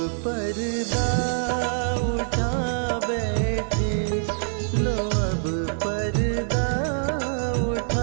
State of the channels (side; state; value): left; silent; digital silence